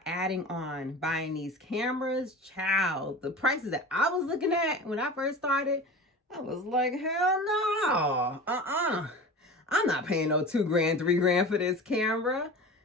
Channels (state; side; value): normal; both; correlation 0.34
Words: adding on buying these cameras, child, the prices that I was looking at when I first started, I was like, hell no, I'm not paying no $2,000, $3,000 for this camera.